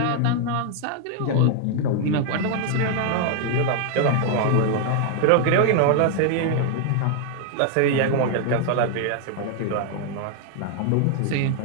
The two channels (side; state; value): both; different; correlation 0.00